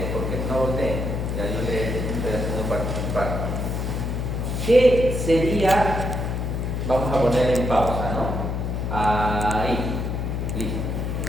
porque no volteen, ya yo le estoy haciendo participar. ¿Qué sería? Vamos a poner en pausa, ¿no? Ahí, listo.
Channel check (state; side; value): noise; left; hum, 1 dB below the sound